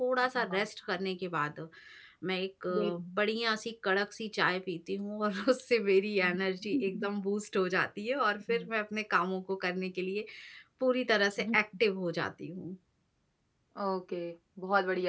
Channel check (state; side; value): identical; both; correlation 1.00